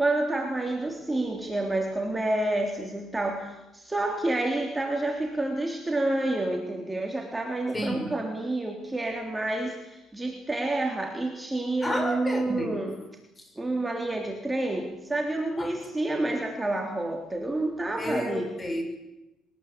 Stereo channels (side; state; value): both; normal; correlation 0.90